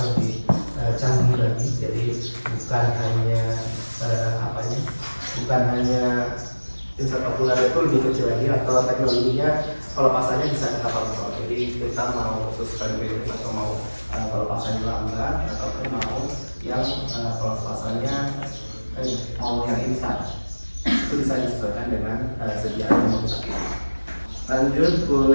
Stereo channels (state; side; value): inverted; both; correlation -1.00